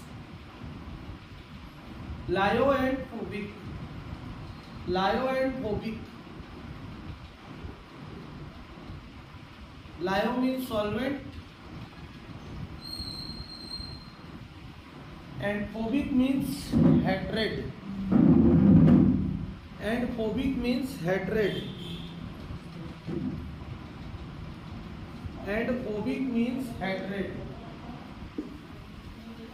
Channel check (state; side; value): identical; both; correlation 1.00